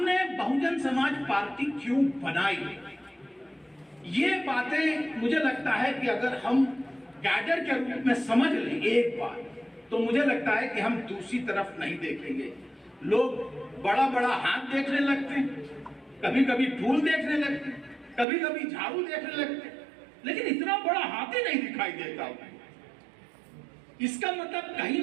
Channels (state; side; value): drops out; left; at 18.2 s